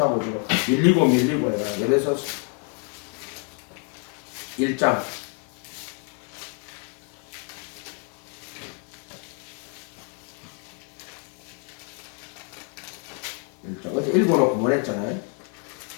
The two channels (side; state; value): right; quieter; 40.0 dB